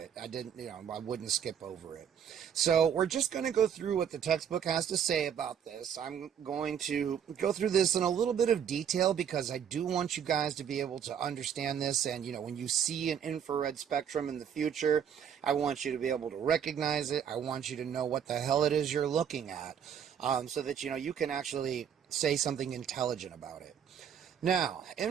I wouldn't skip over it. So we're just going to go through what the textbook has to say about this. I'm going to go through this in a little bit of detail because I do want you guys to be able to understand this, and when you see an infrared spectrum in the future, I want you to be able to recognize it. I want you to know what the hell it is you're looking at, so that you can actually say something intelligent about it. Now,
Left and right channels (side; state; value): left; quieter; 8.3 dB